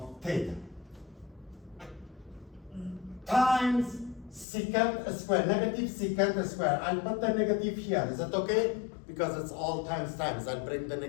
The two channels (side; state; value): right; drops out; at 4.5 s